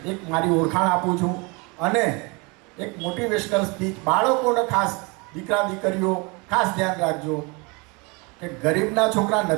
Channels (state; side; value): quieter; left; 28.7 dB